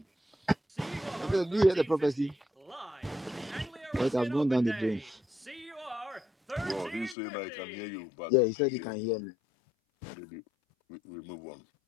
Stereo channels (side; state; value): right; drops out; at 7.2 s